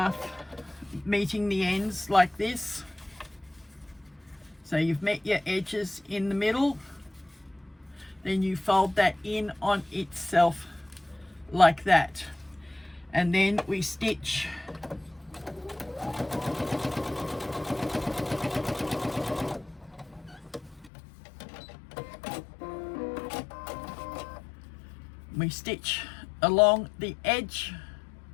meeting the ends like this. So you've met your edges in the middle, then you fold that in on itself like that, and then we stitch along the edge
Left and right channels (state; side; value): drops out; right; at 20.9 s